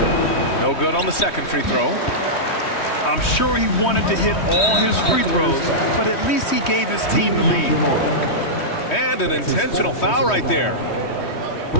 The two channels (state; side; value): late; right; 3.2 ms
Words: No good on the second free throw. I'm sure he wanted to hit all his free throws, but at least he gave his team the lead. And an intentional foul right there.